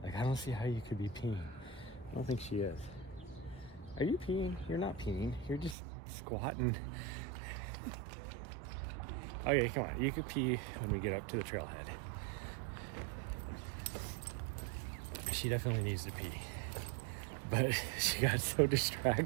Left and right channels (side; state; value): left; drops out; at 5.8 s